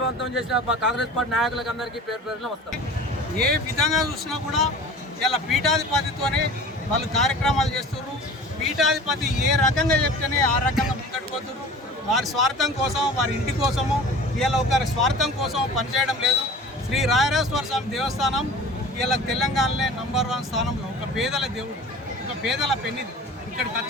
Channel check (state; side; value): normal; both; correlation 0.40